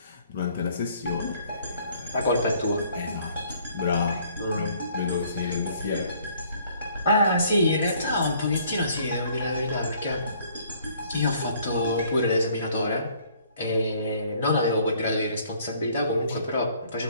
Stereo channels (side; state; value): both; inverted; correlation -0.60